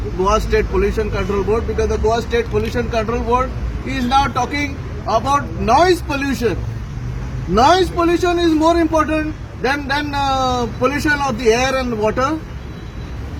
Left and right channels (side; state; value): both; identical; correlation 1.00